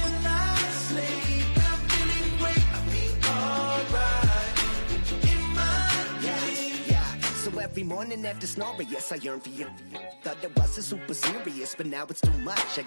I sleep. I'm feeling great, I feel alright. In my dreams. Yeah. So every morning after snoring, yes, I yearn for you. Thought it wasn't super serious, but now it's too much. I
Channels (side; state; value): both; inverted; correlation -1.00